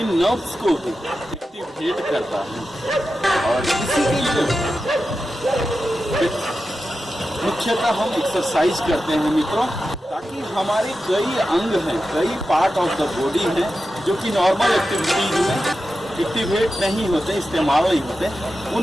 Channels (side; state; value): both; normal; correlation 0.91